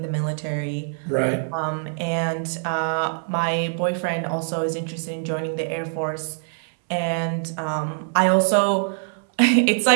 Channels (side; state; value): left; silent; 63 dB below the other